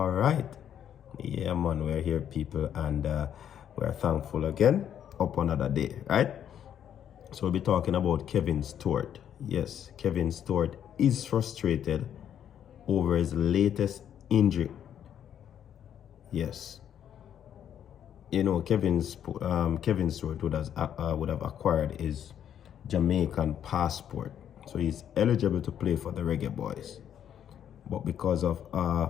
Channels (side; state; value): right; quieter; 9.6 dB